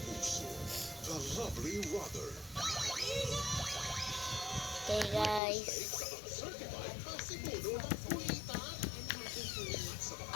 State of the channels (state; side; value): drops out; right; at 5.4 s